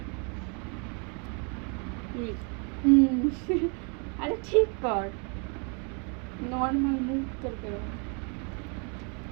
আরে ঠিক কর, নর্মাল মুখ তোর কেরম।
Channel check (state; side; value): quieter; left; 36.6 dB